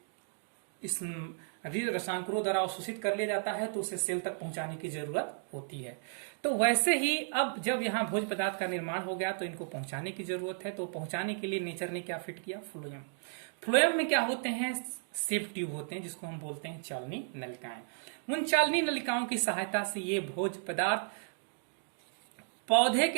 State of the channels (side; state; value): left; silent; digital silence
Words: इस रसायनों द्वारा अवशोषित कर लिया जाता है तो उसे सेल तक पहुंचाने की जरूरत होती है। तो वैसे ही अब जब यहाँ भोज्य पदार्थ का निर्माण हो गया तो इनको पहुंचाने की जरूरत है। तो पहुंचाने के लिए नेचर ने क्या फिट किया? फ्लोएम। फ्लोएम में क्या होते हैं? सेप ट्यूब होते हैं, जिसको हम बोलते हैं चालनी नलिकाएं। उन चालनी नलिकाओं की सहायता से ये भोज्य पदार्थ पौधे